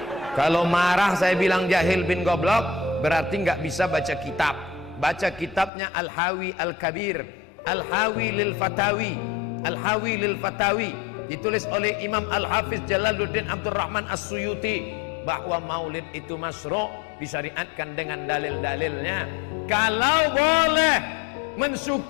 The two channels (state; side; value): drops out; right; at 5.7 s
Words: Kalau marah saya bilang jahil bin goblok, berarti nggak bisa baca kitab. Baca kitabnya Al-Hawi Al-Kabir, Al-Hawi lil Fatawi, Al-Hawi lil Fatawi, ditulis oleh Imam Al-Hafiz Jalaluddin Abdurrahman As-Suyuti, bahwa maulid itu masyru', disyariatkan dengan dalil-dalilnya. Kalau boleh